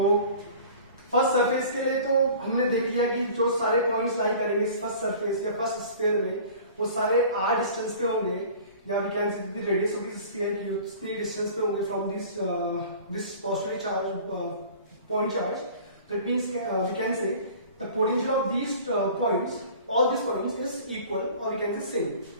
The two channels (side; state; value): both; inverted; correlation -0.44